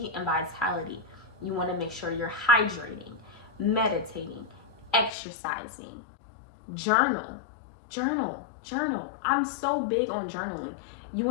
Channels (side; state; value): right; drops out; at 5.1 s